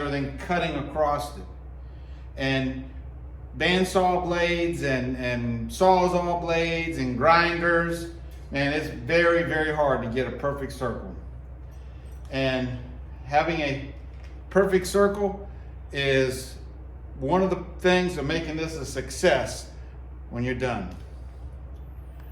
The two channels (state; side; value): identical; both; correlation 1.00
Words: than cutting across it. And bandsaw blades and sawzall blades and grinders, man, it's very, very hard to get a perfect circle. And having a perfect circle is one of the things of making this a success when you're done.